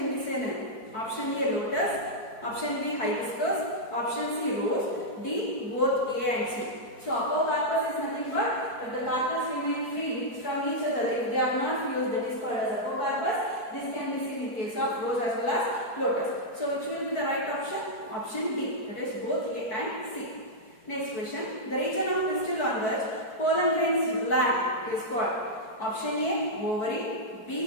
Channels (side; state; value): right; late; 4.6 ms